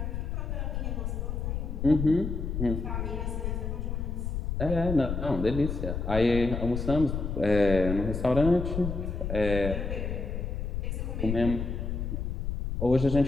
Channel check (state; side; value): noise; left; rumble, 3 dB below the sound